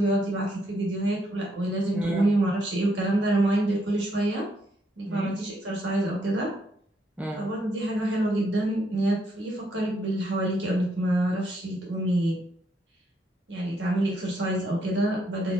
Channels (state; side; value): normal; both; correlation 0.74